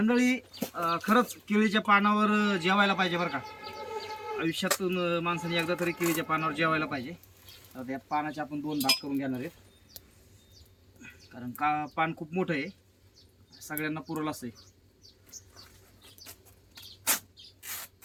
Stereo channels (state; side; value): identical; both; correlation 1.00